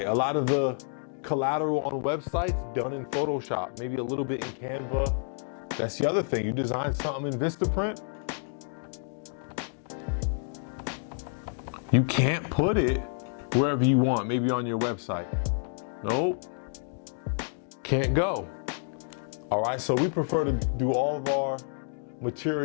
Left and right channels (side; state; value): right; silent; digital silence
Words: A lot of the collateral on websites done in Photoshop. Maybe a little bit in Canva. That's the other thing. You design something in Vistaprint, you can't put it wherever you want, maybe on your website. Nope, can't go. All right, so we prefer to do all of our